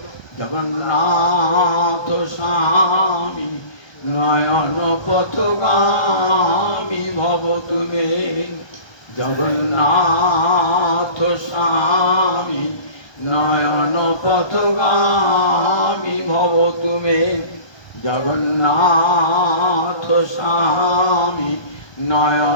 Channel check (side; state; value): right; late; 1.2 ms